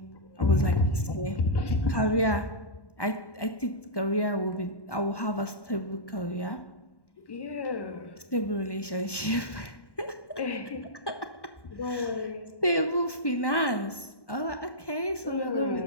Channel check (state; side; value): late; right; 1.1 ms